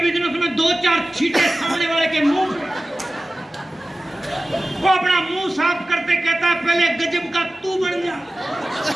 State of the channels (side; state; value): both; normal; correlation 0.96